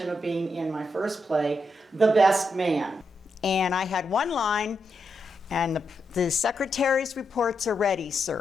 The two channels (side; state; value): both; normal; correlation 0.83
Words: of being in my first play, The Best Man. And I had one line, and the secretary's reports are ready,